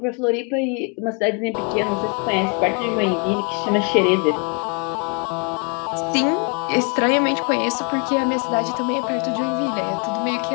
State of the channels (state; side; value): quieter; right; 36.0 dB